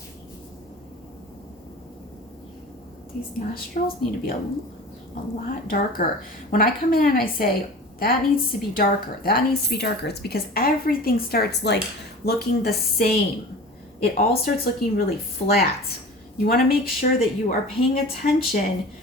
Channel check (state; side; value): normal; both; correlation 0.38